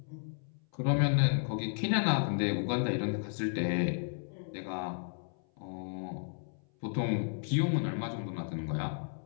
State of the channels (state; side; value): silent; right; 56 dB below the other